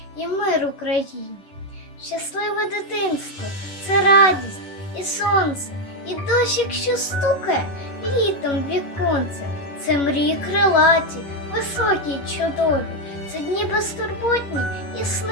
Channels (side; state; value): right; late; 11 ms